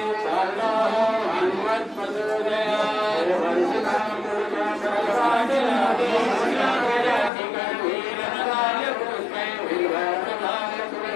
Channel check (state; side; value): drops out; right; at 7.3 s